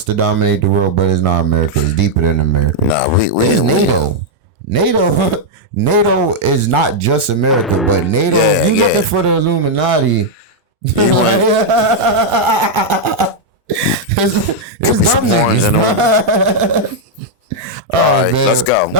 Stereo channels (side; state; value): both; normal; correlation -0.02